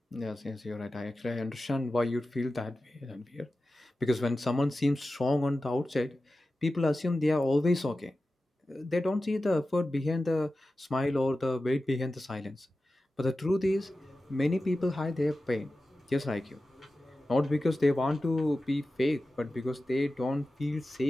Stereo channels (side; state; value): both; normal; correlation 0.94